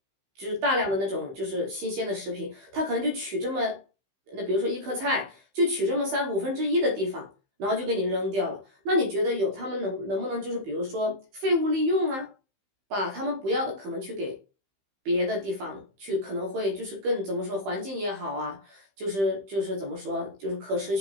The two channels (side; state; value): left; late; 15 ms